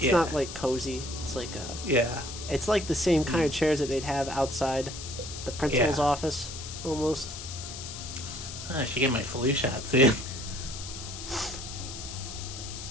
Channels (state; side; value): noise; left; hiss, 10 dB below the sound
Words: not like cozy. It's like Yeah. it's like the same kind of chairs that they'd have outside the principal's office, almost. I should get my flu shot soon.